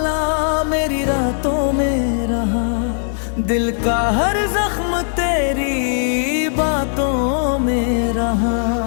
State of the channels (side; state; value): right; silent; digital silence